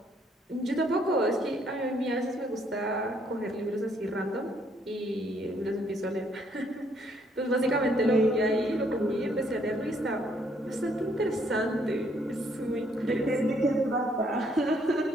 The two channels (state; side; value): normal; both; correlation 0.68